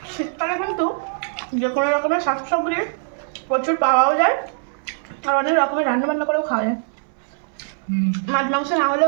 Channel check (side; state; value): left; silent; 64 dB below the other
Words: শীতকালে কিন্তু যে কোনো রকমের শাকসবজি প্রচুর পাওয়াও যায়, আর অনেক রকমের রান্না বান্না করেও খাওয়া যায়। মাছ মাংস না